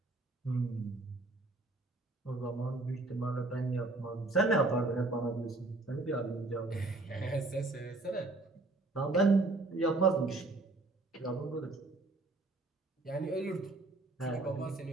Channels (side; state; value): left; quieter; 3.1 dB